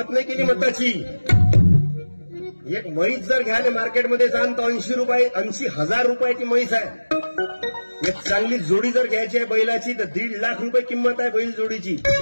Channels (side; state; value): both; inverted; correlation -1.00